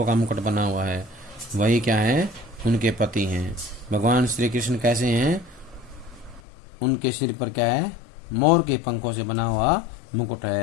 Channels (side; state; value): right; drops out; at 6.4 s